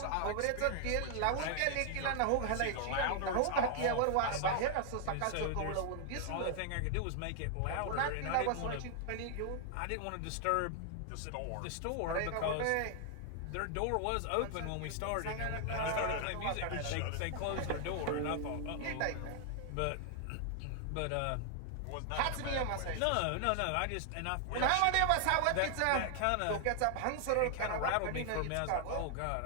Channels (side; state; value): both; different; correlation 0.00